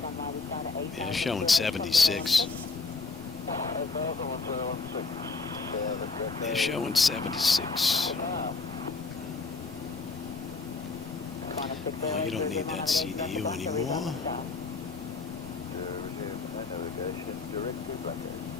They're showing 76. They're showing 76. Well, you don't need that CDU anymore.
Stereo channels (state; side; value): quieter; right; 4.1 dB